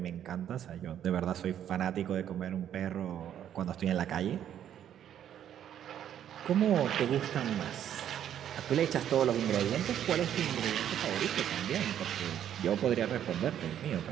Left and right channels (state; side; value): quieter; left; 10.2 dB